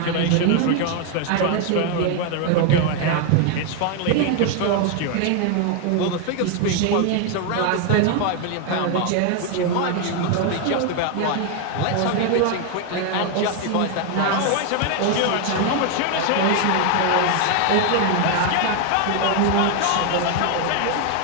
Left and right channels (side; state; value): both; different; correlation 0.01